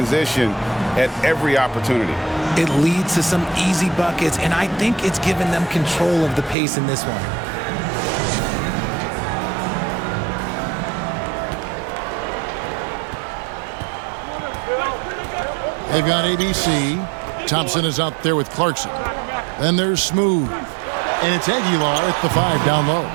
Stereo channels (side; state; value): left; drops out; at 6.6 s